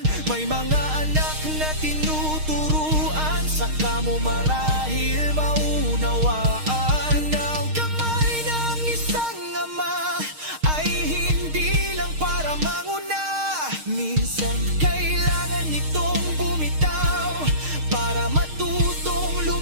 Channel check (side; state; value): left; late; 6.5 ms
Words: mo marahil maunawaan ang kamay ng isang ama ay hindi lang para manguna. Minsan kailangan nitong bumitaw para matutong